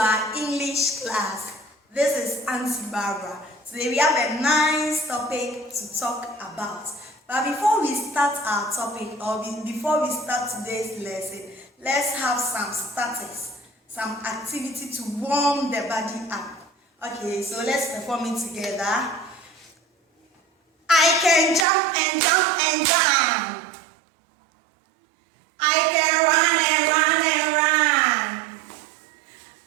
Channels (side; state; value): left; drops out; at 21.7 s